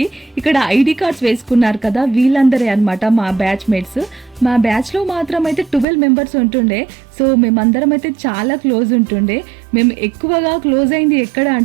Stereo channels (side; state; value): left; drops out; at 5.9 s